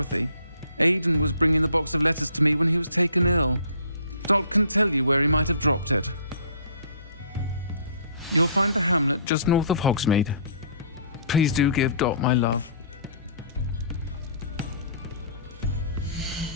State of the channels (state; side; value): inverted; both; correlation -0.54